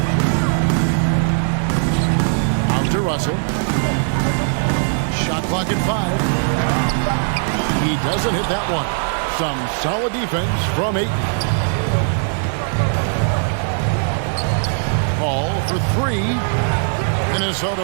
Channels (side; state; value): left; silent; digital silence